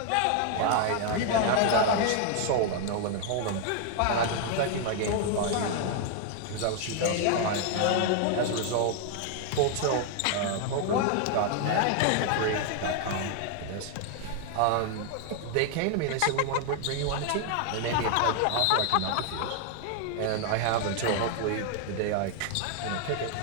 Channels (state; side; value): different; both; correlation 0.00